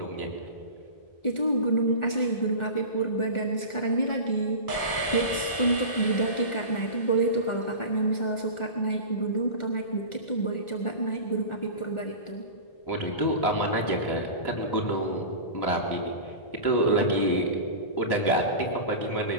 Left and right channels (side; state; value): right; late; 1.4 ms